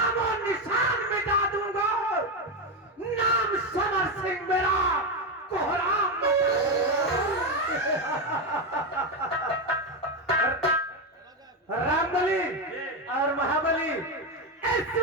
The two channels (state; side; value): normal; both; correlation 0.10